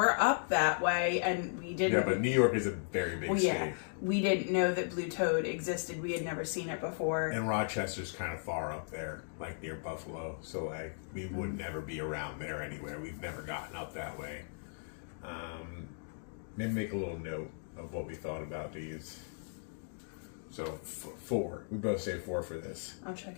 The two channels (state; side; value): silent; right; digital silence